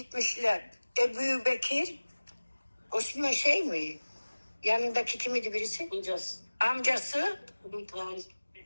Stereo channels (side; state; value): both; inverted; correlation -1.00